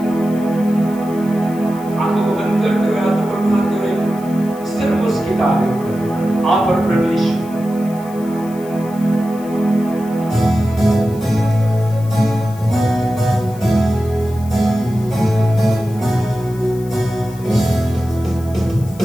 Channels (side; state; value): left; noise; hiss, 22 dB below the sound